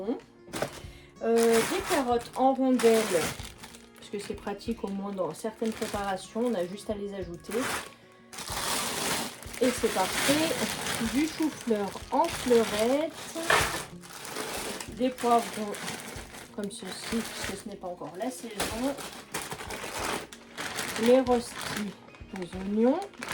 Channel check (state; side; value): identical; both; correlation 1.00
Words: des carottes en rondelles parce que c'est pratique au moins dans certaines préparations, on a juste à les ajouter. Et c'est parfait, du chou-fleur en fleurettes, des poivrons comme ceci puisque ce n'est pas encore la saison, les rostis aux oignons.